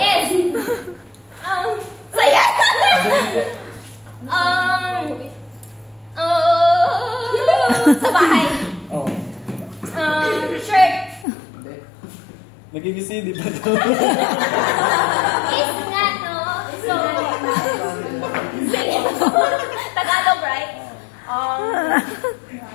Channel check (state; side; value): drops out; right; at 11.2 s